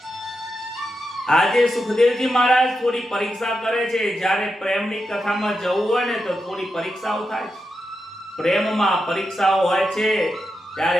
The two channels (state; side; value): normal; both; correlation 0.87